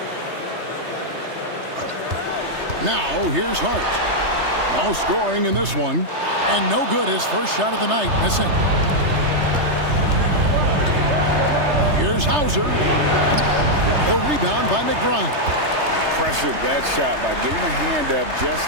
Now, here's Hart. No scoring in this one. And no good, his first shot of the night, missing. Here's Hauser. The rebound by McBride. Pressured that shot by getting a hand up just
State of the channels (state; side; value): late; left; 3.3 ms